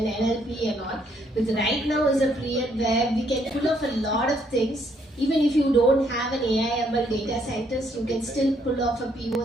NLP and all. But right now is a period where we can pull off a lot of things. Even if you don't have an AI/ML data scientist, you can still pull off a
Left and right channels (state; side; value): normal; both; correlation 0.70